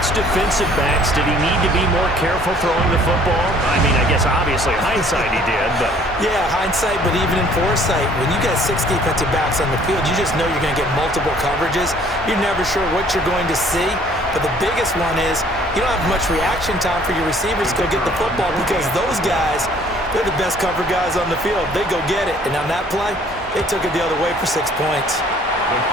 defensive backs, did he need to be more careful throwing the football? I mean, I guess obviously hindsight he did, but... Yeah, hindsight, but even in foresight, when you got 6 defensive backs on the field, you just know you're going to get multiple coverages. You're never sure what you're going to see. But the biggest one is you don't have much reaction time for your receivers to go get the football because those guys, they're the best cover guys on the field. They go get it. And on that play, they took it the other way for 6 points.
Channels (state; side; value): normal; both; correlation 0.57